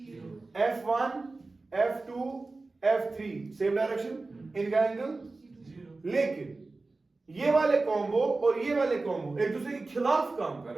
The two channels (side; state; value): left; quieter; 3.5 dB